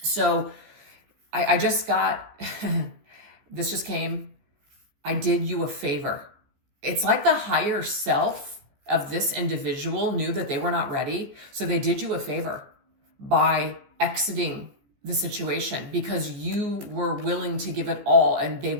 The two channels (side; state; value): left; late; 15 ms